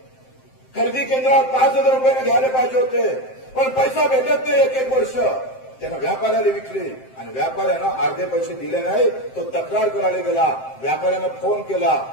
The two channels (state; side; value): late; right; 7.7 ms